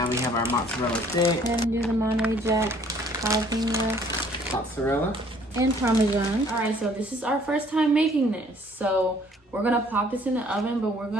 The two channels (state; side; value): normal; both; correlation 0.59